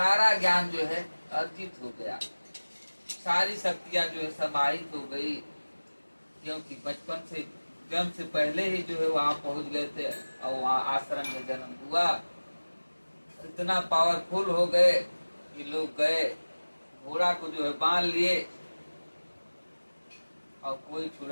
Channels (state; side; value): inverted; both; correlation -1.00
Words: ज्ञान जो है अर्जित हो गया। सारी शक्तियां जो है समाहित हो गई, क्योंकि बचपन से जन्म से पहले ही जो है वहां पहुंच गए थे और वहां आश्रम में जन्म हुआ। इतना पावरफुल हो गए कि लोग गए, घोड़ा को जो है बांध लिए और कोई